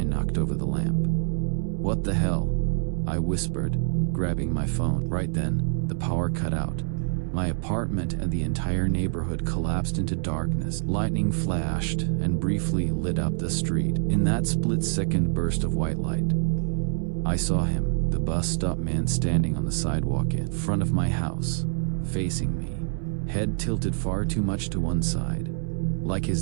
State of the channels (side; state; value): left; silent; 60 dB below the other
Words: knocked over the lamp. "What the hell?" I whispered, grabbing my phone. Right then, the power cut out. My apartment and the entire neighborhood collapsed into darkness. Lightning flashed and briefly lit up the street. In that split-second burst of white light, I saw him, the bus stop man standing on the sidewalk in front of my house, facing me, head tilted far too much to one side, like